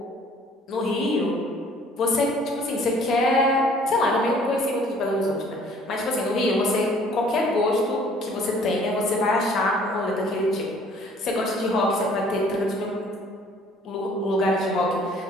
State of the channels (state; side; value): normal; both; correlation 0.56